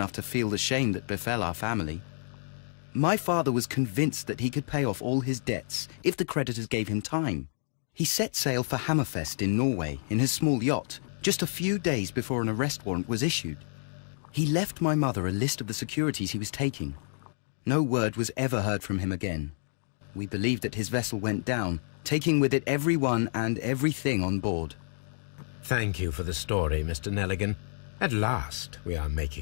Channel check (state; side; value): silent; right; digital silence